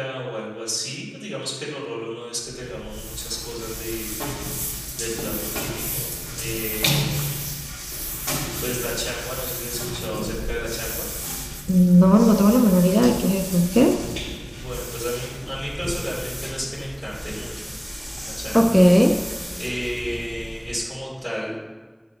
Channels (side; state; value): both; identical; correlation 1.00